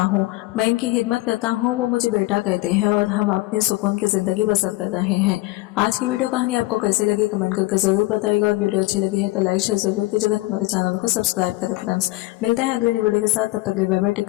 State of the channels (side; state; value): right; quieter; 20.0 dB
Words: हूँ। वो मुझे बेटा कहते हैं और हम अपनी सुकून की जिंदगी बसर कर रहे हैं। आज की वीडियो कहानी आपको कैसी लगी कमेंट करके जरूर बताइएगा, और वीडियो अच्छी लगी है तो लाइक शेयर जरूर कीजिएगा। हमारे चैनल को सब्सक्राइब करें फ्रेंड्स। मिलते हैं अगली वीडियो के साथ, तब तक के लिए बाय बाय, टेक